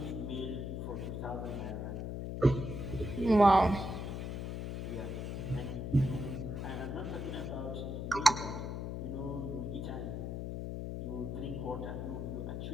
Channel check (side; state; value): left; noise; hum, 4 dB below the sound